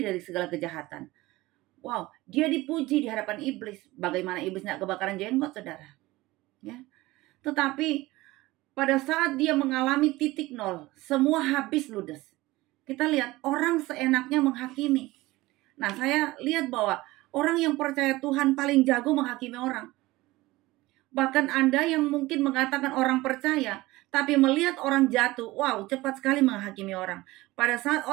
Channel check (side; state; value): left; quieter; 19.4 dB